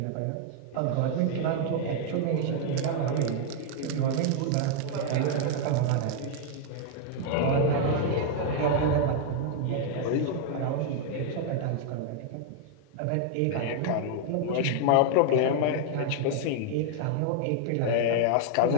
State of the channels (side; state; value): both; different; correlation 0.00